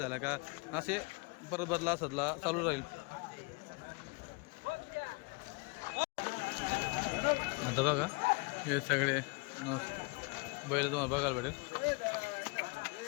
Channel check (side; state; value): right; quieter; 29.9 dB